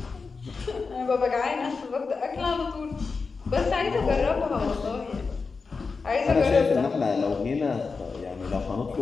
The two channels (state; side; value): quieter; right; 4.6 dB